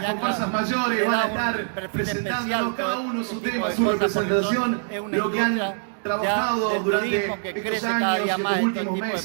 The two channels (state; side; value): silent; left; digital silence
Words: comparsas mayores van a estar presentando cada uno su tema, su representación, lo que han trabajado durante estos años, estos últimos